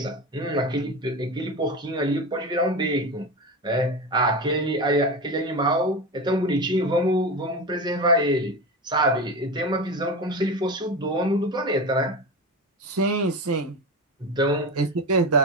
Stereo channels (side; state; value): both; normal; correlation 0.23